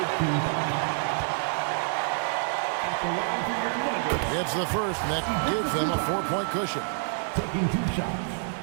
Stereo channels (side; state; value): left; silent; digital silence